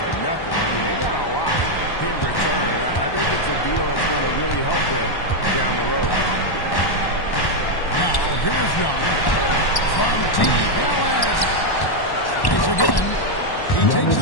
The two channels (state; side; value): late; right; 1.1 ms